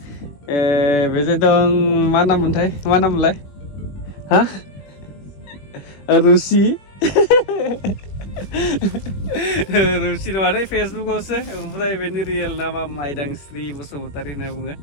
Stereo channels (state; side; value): late; right; 21 ms